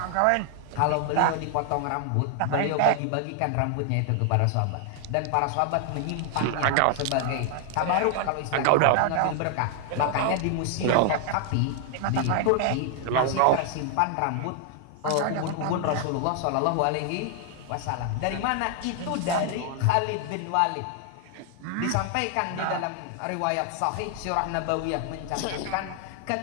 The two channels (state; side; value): different; both; correlation 0.00